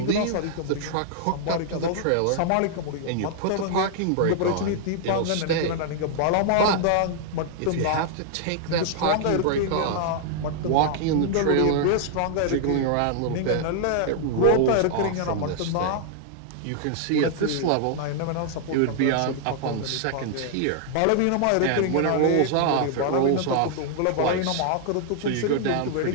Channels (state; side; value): different; both; correlation -0.01